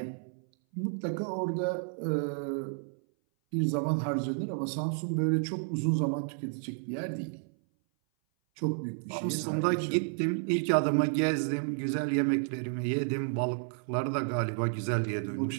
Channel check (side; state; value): left; silent; 57 dB below the other